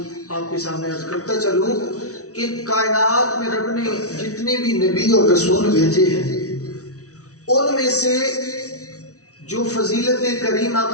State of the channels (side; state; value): right; late; 0.66 ms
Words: آپ کے سامنے عرض کرتا چلوں کہ کائنات میں رب نے جتنے بھی نبی اور رسول بھیجے ہیں، ان میں سے جو فضیلت کریم